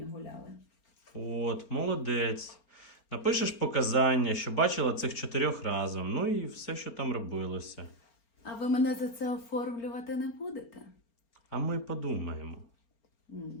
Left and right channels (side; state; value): right; late; 4.4 ms